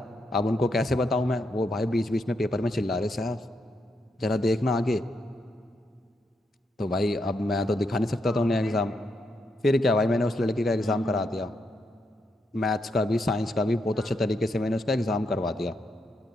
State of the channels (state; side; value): normal; both; correlation 0.80